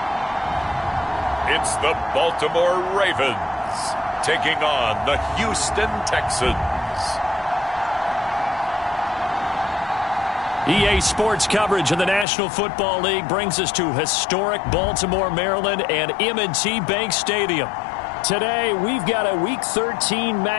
It's the Baltimore Ravens taking on the Houston Texans. EA Sports coverage of the National Football League brings us to historic Baltimore, Maryland and M&T Bank Stadium. Today, we've got a Week 13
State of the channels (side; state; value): right; drops out; at 12.2 s